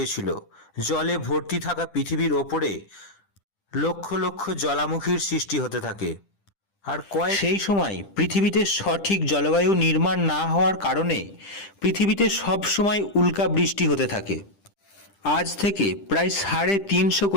জলে ভর্তি থাকা পৃথিবীর ওপরে লক্ষ লক্ষ জ্বালামুখীর সৃষ্টি হতে থাকে। আর সেই সময় পৃথিবীতে সঠিক জলবায়ু নির্মাণ না হওয়ার কারণে পৃথিবীতে সব সময় উল্কা বৃষ্টি হতে থাকে। আজ থেকে প্রায় 350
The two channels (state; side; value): late; right; 10 ms